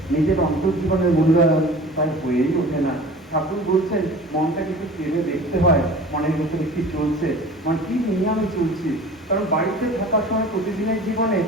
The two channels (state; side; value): normal; both; correlation 0.41